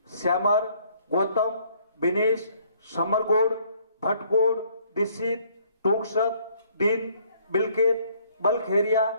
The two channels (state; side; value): inverted; both; correlation -0.63